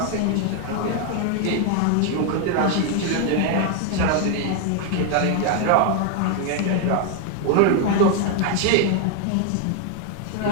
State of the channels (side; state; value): both; different; correlation 0.01